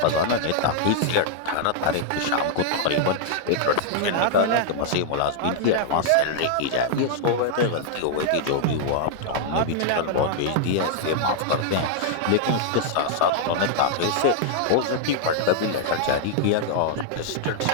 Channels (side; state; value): both; different; correlation -0.01